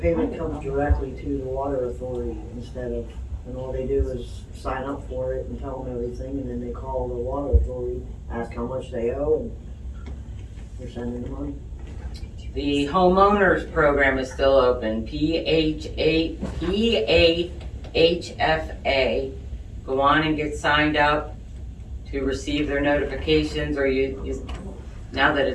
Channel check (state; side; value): identical; both; correlation 1.00